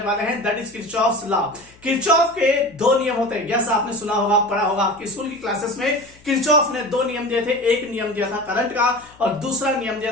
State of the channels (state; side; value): noise; left; hum, 27 dB below the sound